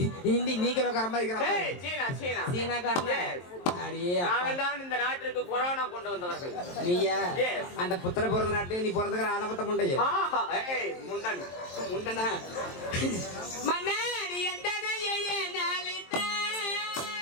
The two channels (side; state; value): right; late; 23 ms